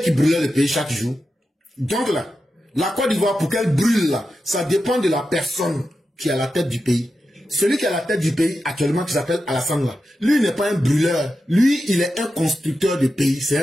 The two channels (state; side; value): normal; both; correlation 0.90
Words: qui brûlaient le pays chaque jour. Donc là, la Côte d'Ivoire, pour qu'elle brûle là, ça dépend de la personne qui est à la tête du pays. Celui qui est à la tête du pays actuellement, qui s'appelle Alassane là, lui n'est pas un brûleur. Lui, il est un constructeur de pays, c'est